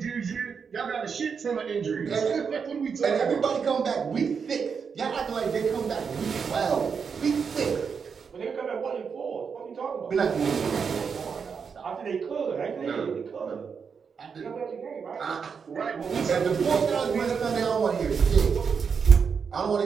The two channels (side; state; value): left; quieter; 6.1 dB